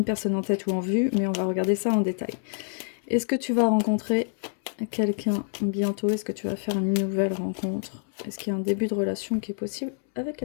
personne en tête ou en vue, mais on va regarder ça en détail. Est-ce que tu vas rencontrer quelqu'un bientôt? Est-ce que tu vas faire une nouvelle rencontre? Est-ce qu'il y a un début de relation qui est possible avec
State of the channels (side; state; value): right; silent; 60 dB below the other